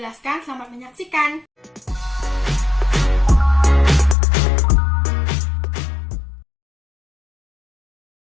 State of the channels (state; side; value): drops out; right; at 4.2 s